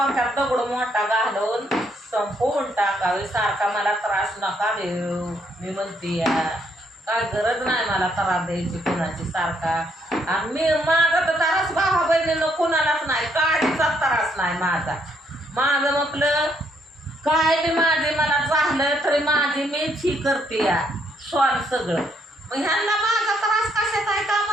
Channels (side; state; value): both; normal; correlation 0.72